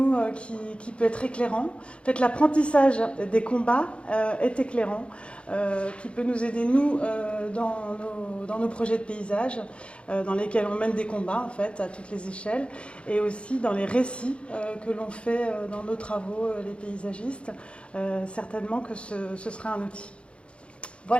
qui peut être éclairant. En fait, l'apprentissage des combats est éclairant, qui peut nous aider, nous, dans nos projets de paysage, dans lesquels on mène des combats, en fait, à toutes les échelles, et aussi dans les récits que l'on fait dans nos travaux, les paysagistes. Certainement que ce sera un outil.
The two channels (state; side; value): late; right; 0.059 ms